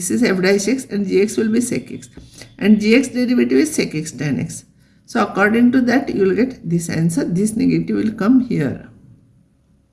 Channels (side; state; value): both; identical; correlation 1.00